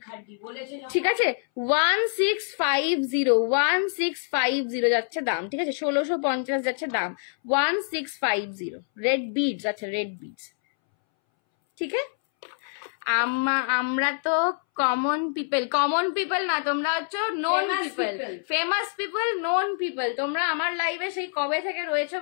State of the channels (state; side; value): silent; right; 61 dB below the other